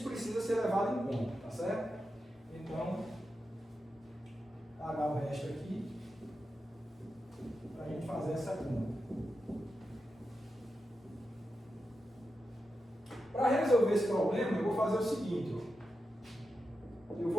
precisa ser levado em conta, tá certo? Então, pagar o resto aqui, para a gente fazer essa conta. Para resolver esse problema, eu vou fazer o seguinte, ó. Eu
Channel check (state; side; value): normal; both; correlation 0.89